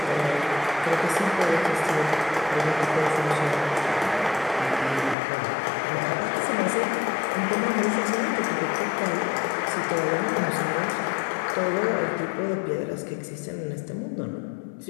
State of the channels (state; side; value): drops out; right; at 5.2 s